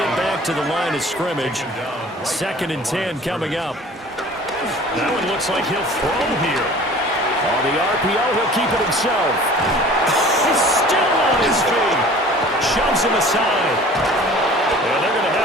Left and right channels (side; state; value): both; normal; correlation 0.46